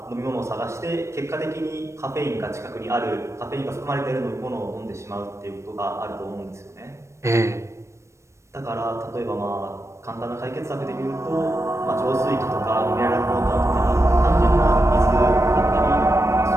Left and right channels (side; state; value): left; late; 0.14 ms